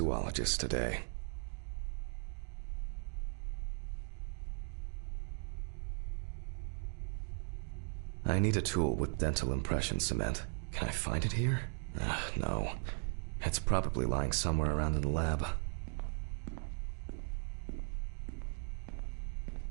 today. I need a tool with dental impression cement. Can I find it here? No. It's probably lying somewhere around in the lab.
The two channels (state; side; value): silent; left; 52 dB below the other